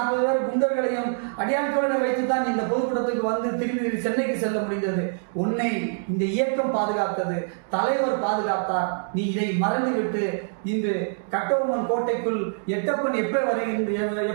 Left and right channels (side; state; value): left; silent; digital silence